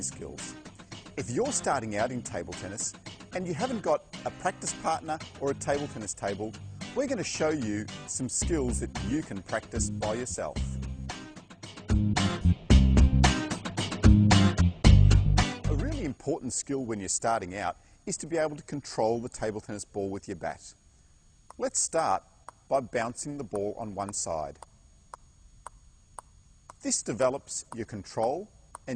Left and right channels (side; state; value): both; identical; correlation 1.00